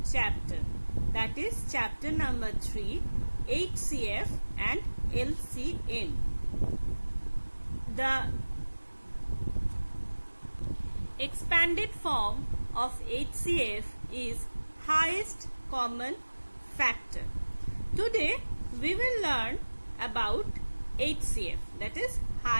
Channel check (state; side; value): inverted; both; correlation -1.00